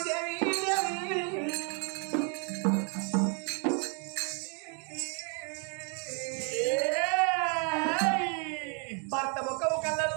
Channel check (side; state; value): left; quieter; 38.5 dB